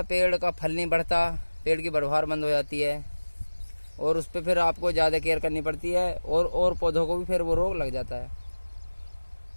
पेड़ का फल नहीं बढ़ता, पेड़ की बढ़वार बंद हो जाती है, और उस पर फिर आपको ज़्यादा केयर करनी पड़ती है, और पौधों को भी फिर वो रोग लग जाता है।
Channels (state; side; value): inverted; both; correlation -1.00